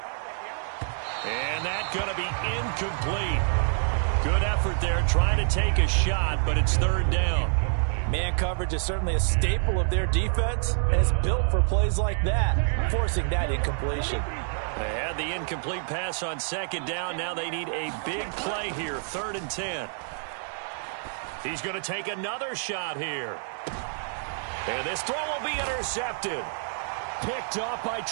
And that's going to be incomplete. Good effort there trying to take a shot, but it's third down. Man coverage is certainly a staple of their defense, and it's built for plays like that, forcing that incompletion. They had the incomplete pass on second down. Now they need a big play here, 3rd and 10. He's going to take another shot here. And this throw will be intercepted. Picked off by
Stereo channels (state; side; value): silent; left; digital silence